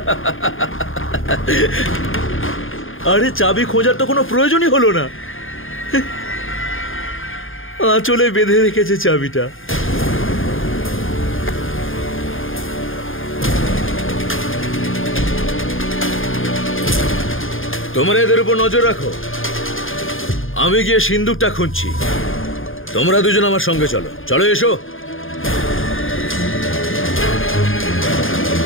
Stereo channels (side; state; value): right; late; 0.59 ms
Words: আরে চাবি খোঁজার তো কোনো প্রয়োজনই হলো না, আঁচলে বেঁধে রেখেছে চাবিটা। তোমরা এদের উপর নজর রাখো, আমি গিয়ে সিন্দুকটা খুঁজছি। তোমরা দুজন আমার সঙ্গে চলো। চলো, এসো।